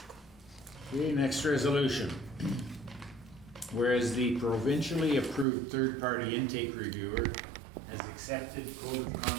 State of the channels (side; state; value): left; drops out; at 5.5 s